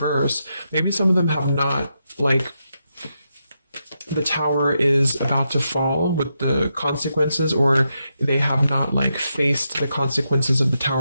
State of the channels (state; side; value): inverted; both; correlation -0.84